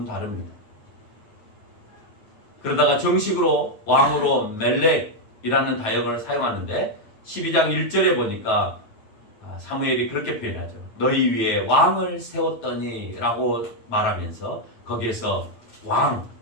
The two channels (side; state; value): right; late; 9.0 ms